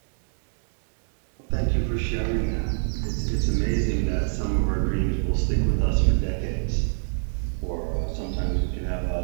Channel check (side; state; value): left; silent; digital silence